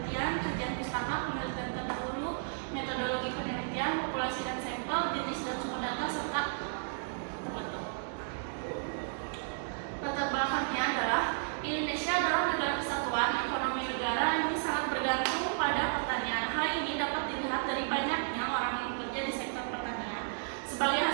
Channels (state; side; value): silent; left; digital silence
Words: kajian pustaka, penelitian terdahulu, metodologi penelitian, populasi dan sampel, jenis dan sumber data, serta penutup. Latar belakangnya adalah Indonesia adalah negara kesatuan. Ekonomi negara ini sangat bergantung pada pertanian. Hal ini dapat dilihat dari banyaknya orang yang bekerja di sektor pertanian. Sebagai